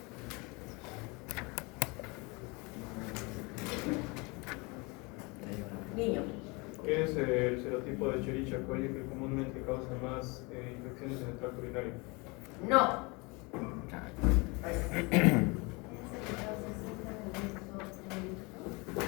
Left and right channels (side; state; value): right; quieter; 27.6 dB